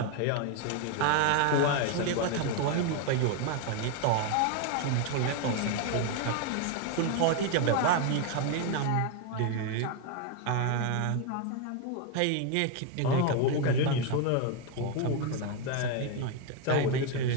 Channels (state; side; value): different; both; correlation 0.01